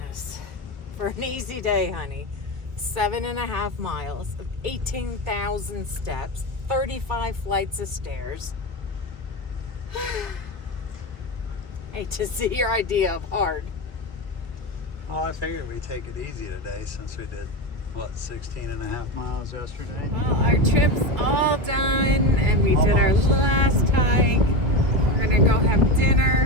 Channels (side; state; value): left; late; 2.4 ms